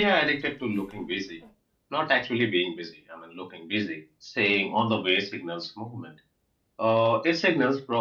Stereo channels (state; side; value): identical; both; correlation 1.00